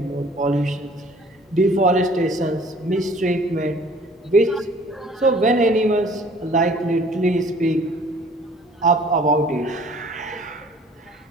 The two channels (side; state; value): both; normal; correlation 0.53